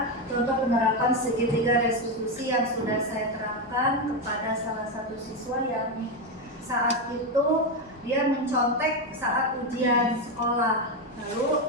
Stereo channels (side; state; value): both; normal; correlation 0.10